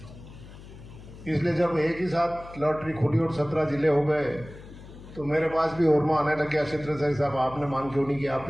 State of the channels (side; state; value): left; noise; hum, 17 dB below the sound